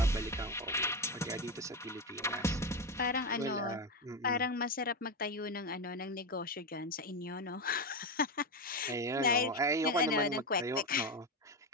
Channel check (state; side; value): normal; both; correlation 0.14